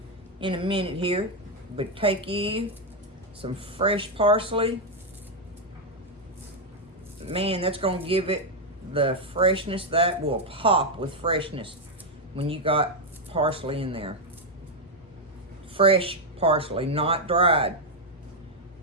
In a minute here. But take you some fresh parsley. Man, that's going to give it the freshness that will pop with freshness when you got parsley in there. Fresh parsley, not dried.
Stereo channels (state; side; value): normal; both; correlation 0.01